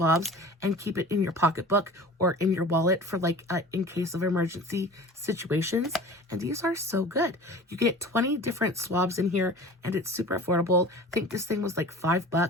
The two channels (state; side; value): normal; both; correlation 0.39